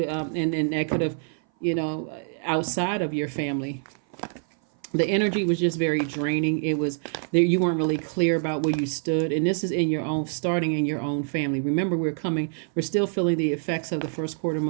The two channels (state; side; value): silent; left; 58 dB below the other